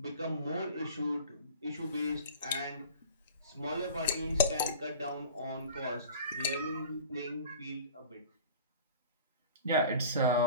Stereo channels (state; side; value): inverted; both; correlation -0.40